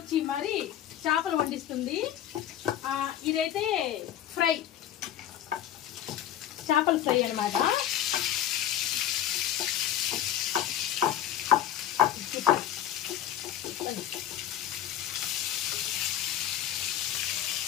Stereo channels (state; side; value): quieter; right; 11.2 dB